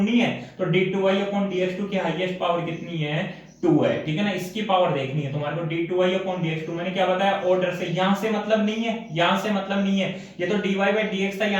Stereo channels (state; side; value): identical; both; correlation 1.00